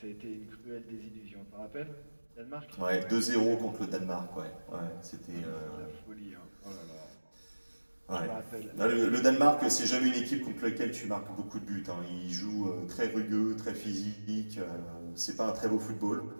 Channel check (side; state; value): both; inverted; correlation -1.00